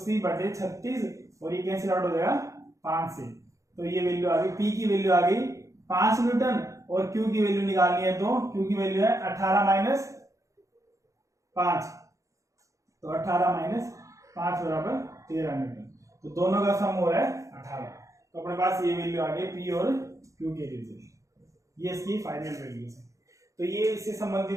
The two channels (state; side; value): late; left; 0.15 ms